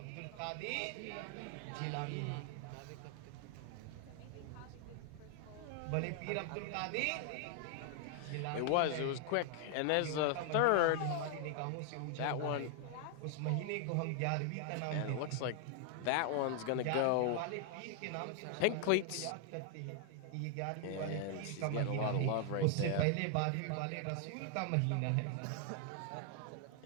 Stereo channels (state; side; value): different; both; correlation 0.00